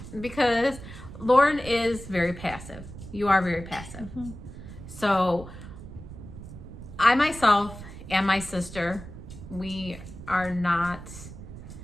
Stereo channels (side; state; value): right; noise; rumble, 13 dB below the sound